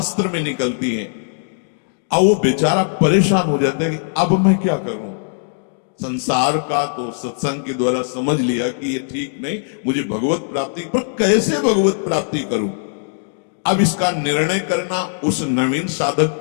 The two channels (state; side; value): silent; right; digital silence